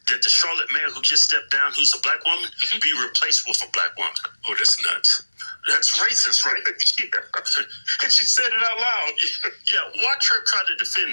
that the Charlotte mayor who just stepped down, who's a black woman, be replaced with a black woman. Oh, that's nuts. That's racist, right? Yeah. And she said it out loud. Yeah, watch her try to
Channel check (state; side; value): inverted; both; correlation -1.00